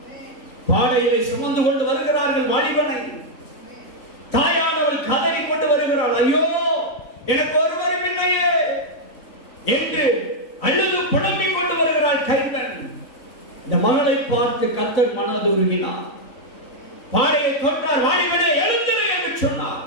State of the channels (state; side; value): late; right; 4.0 ms